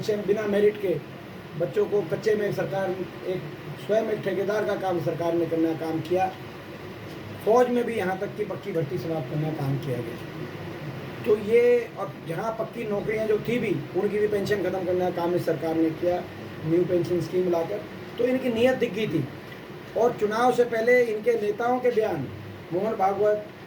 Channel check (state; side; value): identical; both; correlation 1.00